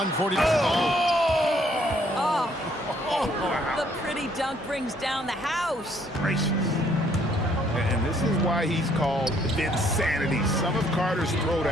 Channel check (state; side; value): normal; both; correlation 0.66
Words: Oh, the pretty dunk brings down the house. Gracious. And this is why he's called Vinsanity. Some of Carter's